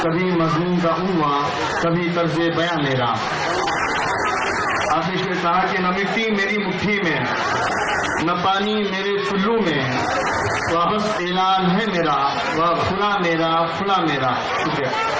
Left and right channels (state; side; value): identical; both; correlation 1.00